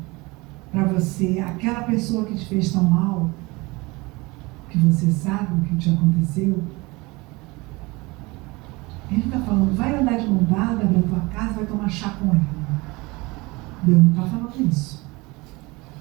para você, aquela pessoa que te fez tão mal, que você sabe o que te aconteceu. Ele está falando, vai andar de mão dada na tua casa, vai tomar chá com ela. Deus não está falando isso.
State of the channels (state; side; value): quieter; left; 23.9 dB